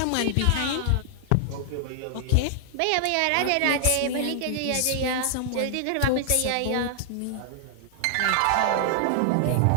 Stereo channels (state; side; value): different; both; correlation -0.01